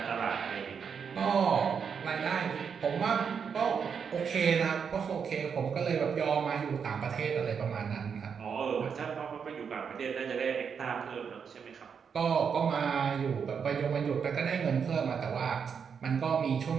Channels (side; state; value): left; quieter; 6.7 dB